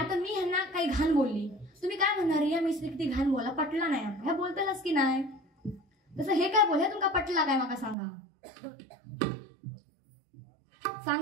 मी ह्यांना काही घाण बोलली, तुम्ही काय म्हणणार, या मिस्त्री किती घाण बोला, पटला नाही ह्या बोलतालच की नाही. तसं हे काय बोल, हे तुमका पटला काय मला सांगा.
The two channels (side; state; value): left; drops out; at 8.0 s